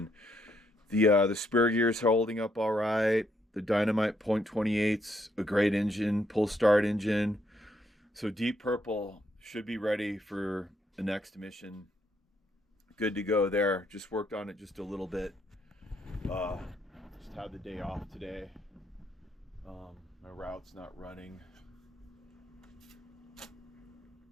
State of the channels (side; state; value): both; normal; correlation 0.74